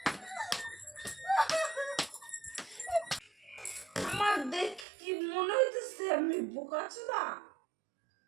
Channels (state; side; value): drops out; left; at 4.9 s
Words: আমার দেখি মনে হইতেছে আমি বোকাচোদা।